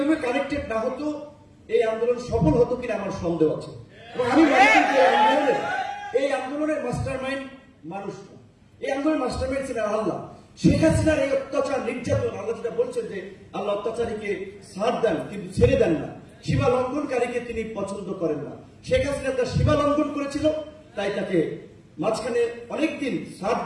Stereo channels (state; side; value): identical; both; correlation 1.00